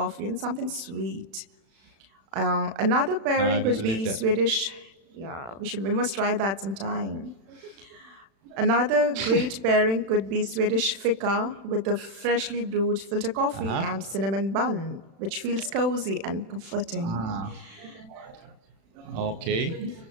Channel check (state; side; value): late; left; 36 ms